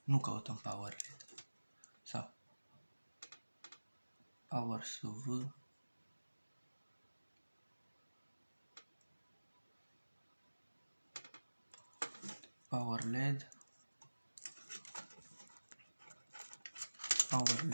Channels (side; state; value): both; inverted; correlation -1.00